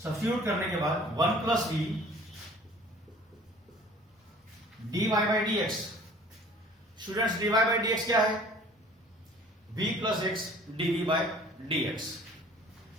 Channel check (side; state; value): both; normal; correlation 0.49